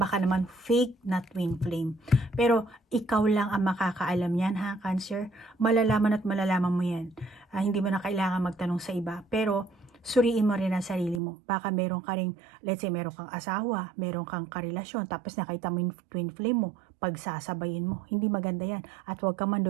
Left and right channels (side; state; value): left; drops out; at 11.2 s